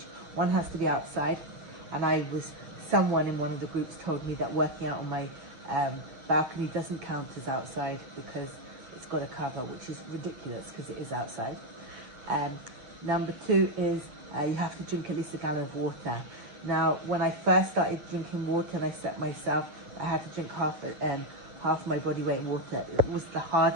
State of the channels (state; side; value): late; left; 8.9 ms